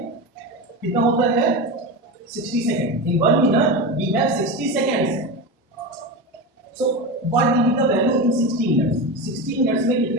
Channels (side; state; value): both; normal; correlation 0.21